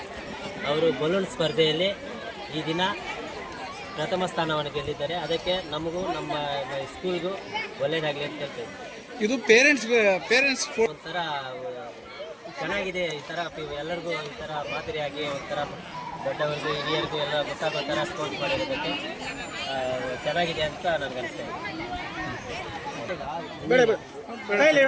ಅವರು ಬಲೂನ್ ಸ್ಪರ್ಧೆಯಲ್ಲಿ ಈ ದಿನ ಪ್ರಥಮ ಸ್ಥಾನವನ್ನು ಗೆದ್ದಿದ್ದಾರೆ. ಅದಕ್ಕೆ ನಮಗೂ ನಮ್ಮ ಸ್ಕೂಲ್ಗೂ ಒಳ್ಳೆಯದಾಗಲಿ ಅಂತ ಹೇಳ್ತೇವೆ. ಇದು ಪೇರೆಂಟ್ಸ್ ಒಂಥರ ಚೆನ್ನಾಗಿದೆ. ಈ ಥರ ಎಲ್ಲರಿಗೂ ಈ ಥರ ಮಾದರಿಯಾಗಿ ಒಂಥರ ದೊಡ್ಡವರಿಗೂ ಹಿರಿಯರಿಗೂ ಎಲ್ಲ ಗೊತ್ತಾಗೋ ಥರ ಸ್ಪೋರ್ಟ್ಸ್ ಮಾಡಿರೋದಕ್ಕೆ ಚೆನ್ನಾಗಿದೆ ಅಂತ ನನಗೆ ಅನಿಸ್ತಾ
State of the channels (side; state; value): both; identical; correlation 1.00